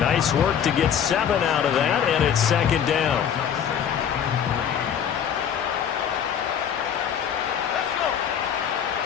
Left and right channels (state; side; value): quieter; right; 8.5 dB